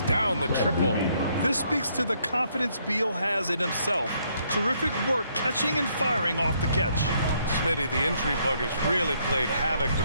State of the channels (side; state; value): both; inverted; correlation -0.70